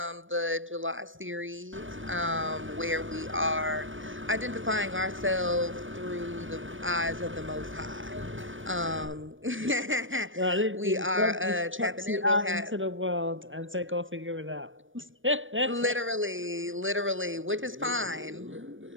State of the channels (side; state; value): left; late; 0.57 ms